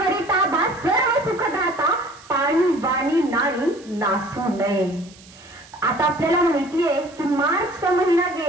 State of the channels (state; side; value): noise; right; hiss, 24 dB below the sound